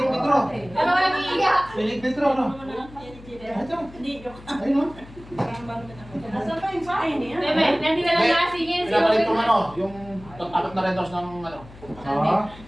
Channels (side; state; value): left; noise; hum, 19 dB below the sound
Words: Petro. Ano ka nag-iiyak? Pinig Petro, no? Ito. Hindi, joke. Ayun, no? Nasaan pa yung sakin niya? Bebe, nandito na lang nasingin. Pinapalit yung ano, yung apat na rentos ng ano. Ah.